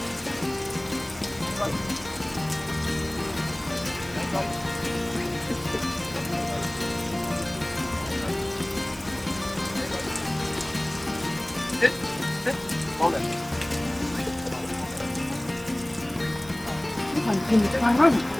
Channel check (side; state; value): right; noise; hiss, 18 dB below the sound